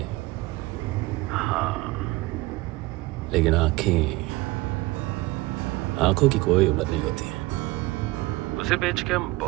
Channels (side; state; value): left; quieter; 20.8 dB